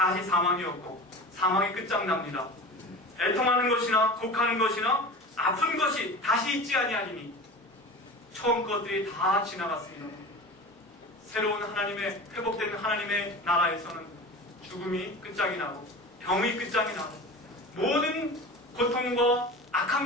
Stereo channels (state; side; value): normal; both; correlation 0.33